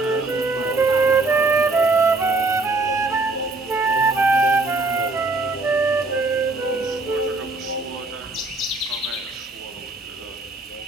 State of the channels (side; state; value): left; quieter; 3.3 dB